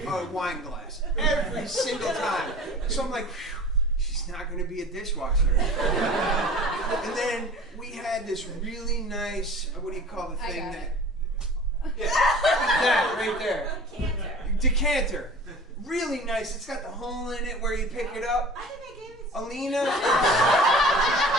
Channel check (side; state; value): both; normal; correlation 0.42